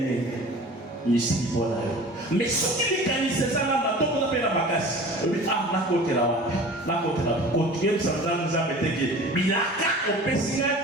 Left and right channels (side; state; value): both; normal; correlation 0.41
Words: Ici, voilà. Mais ce qui est canné, c'est ça, là, on a fait la bagasse. Ah, la côte là, la côte là. Continuez, ça nous a été que. Bilaka, au Pessinga,